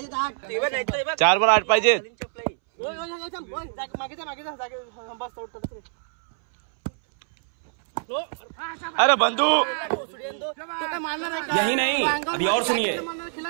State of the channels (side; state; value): left; silent; 62 dB below the other